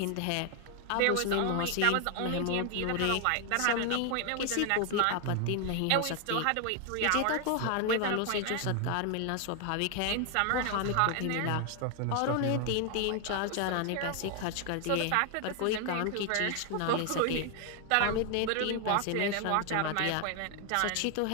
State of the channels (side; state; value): both; different; correlation 0.01